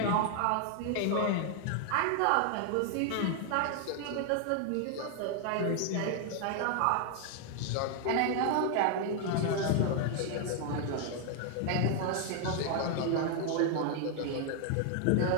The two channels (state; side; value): different; both; correlation 0.00